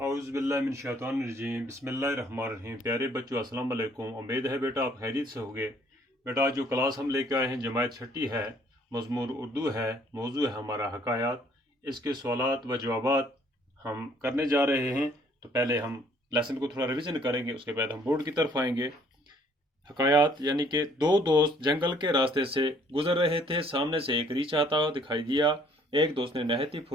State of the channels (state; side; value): normal; both; correlation 0.61